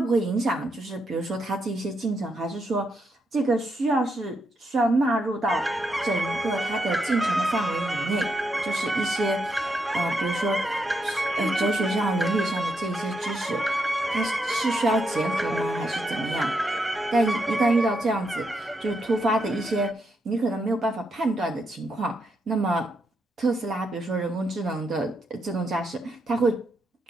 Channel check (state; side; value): normal; both; correlation 0.81